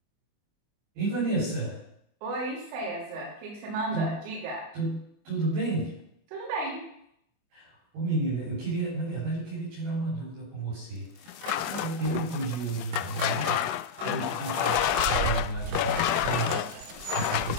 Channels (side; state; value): left; late; 24 ms